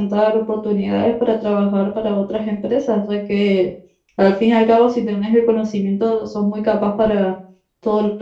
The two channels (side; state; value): both; identical; correlation 1.00